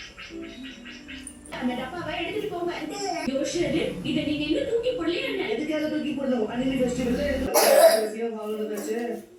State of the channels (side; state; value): both; identical; correlation 1.00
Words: அந்த டப்பாவை எடுத்துட்டு போங்க. யோஷரு, இத நீங்க இன்னும் தூக்கி போடலையா என்ன? எதுக்காக தூக்கி போடணும்? அனிமி ஃபெஸ்டிவல்ல பேசியா வாங்குனதாச்சு.